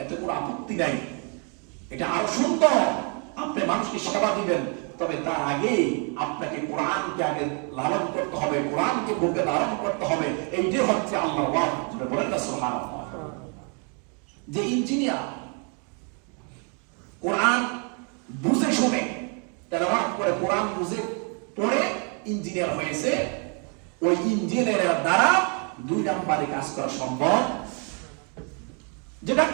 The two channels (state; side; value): quieter; left; 37.9 dB